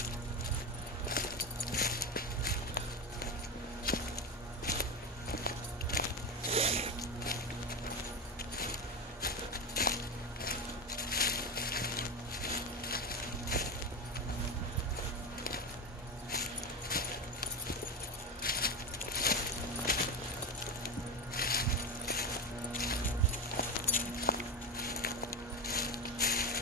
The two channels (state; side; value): normal; both; correlation 0.18